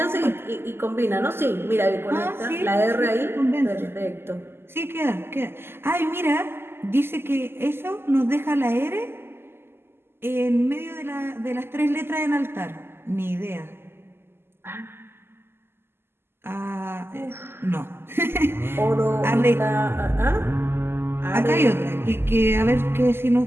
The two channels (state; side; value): late; left; 0.12 ms